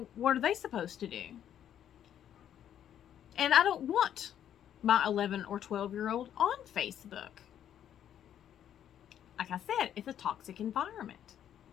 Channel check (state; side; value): quieter; right; 10.1 dB